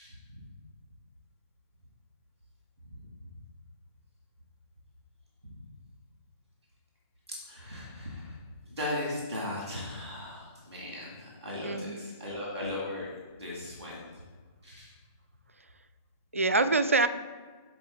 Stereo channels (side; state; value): both; inverted; correlation -0.31